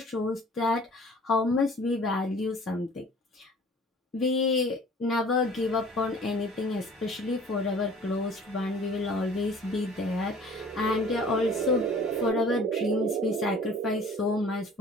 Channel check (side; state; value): both; normal; correlation 0.49